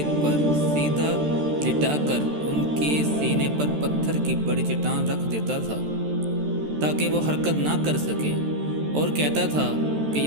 پر سیدھا لٹا کر ان کے سینے پر پتھر کی بڑی چٹان رکھ دیتا تھا تاکہ وہ حرکت نہ کر سکیں، اور کہتا تھا کہ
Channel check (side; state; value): left; late; 13 ms